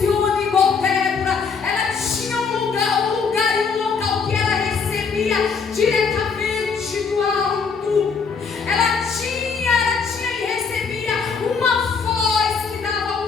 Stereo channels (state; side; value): quieter; right; 5.5 dB